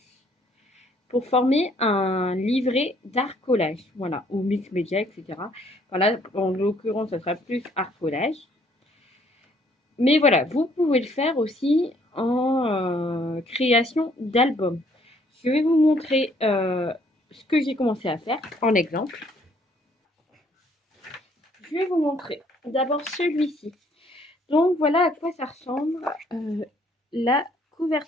pour former un livret d'art collage, voilà, ou mix média, etc. Voilà, en l'occurrence, ça sera plus art collage. Mais voilà, vous pouvez le faire aussi en création d'albums. Je vais vous montrer ce que j'ai commencé à faire en exemple. Je vais vous montrer d'abord celui-ci. Donc voilà à quoi ça ressemble la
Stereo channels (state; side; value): normal; both; correlation 0.64